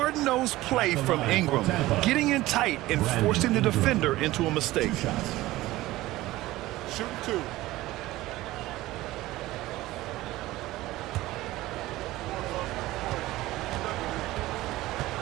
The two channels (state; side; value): quieter; left; 17.4 dB